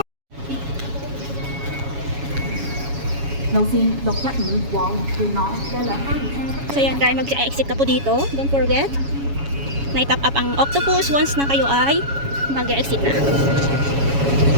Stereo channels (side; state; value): left; late; 7.2 ms